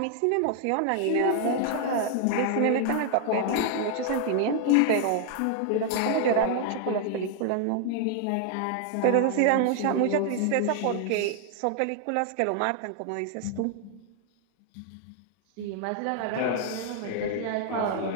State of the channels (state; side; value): different; both; correlation 0.00